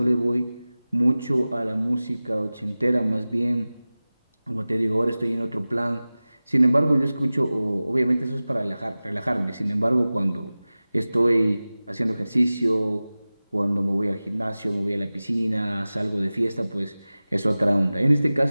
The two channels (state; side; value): inverted; both; correlation -0.97